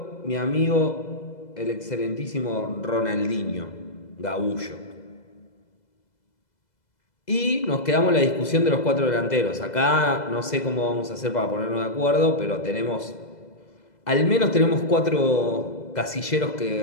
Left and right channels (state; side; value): late; right; 2.0 ms